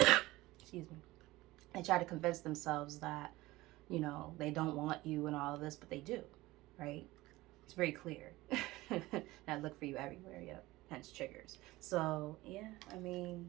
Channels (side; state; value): left; quieter; 19.0 dB